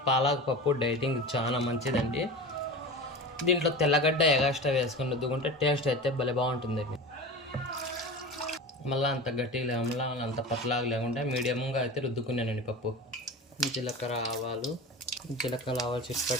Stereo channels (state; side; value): normal; both; correlation 0.30